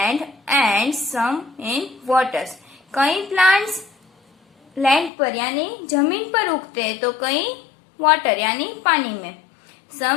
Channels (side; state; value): right; drops out; at 5.1 s